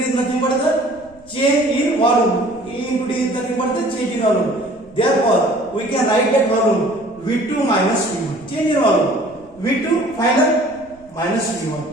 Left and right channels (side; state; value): right; noise; rumble, 27 dB below the sound